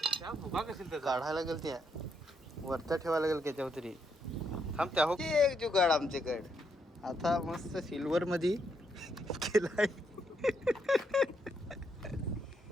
काढायला गेल त्या वरता ठेवायला गेल त्याच्यावर तरी. थांब त्या हो एक जुगाड आमच्याकडे आता मस्त सिल्वर मध्ये केलाय.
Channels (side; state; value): both; normal; correlation 0.77